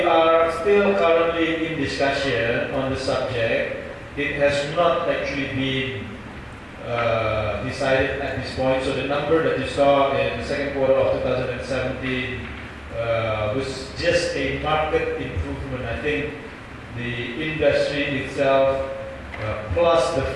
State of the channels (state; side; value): identical; both; correlation 1.00